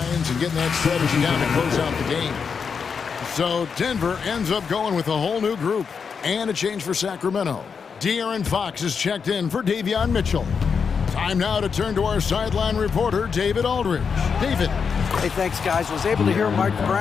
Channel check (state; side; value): quieter; right; 6.0 dB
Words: and getting that strategy down to close out the game. So Denver ends up going with a whole new group and a change for Sacramento. De'Aaron Fox is checked in for Davion Mitchell. Time now to turn to our sideline reporter, David Aldridge. David. Hey, thanks, guys. Was able to hear Mike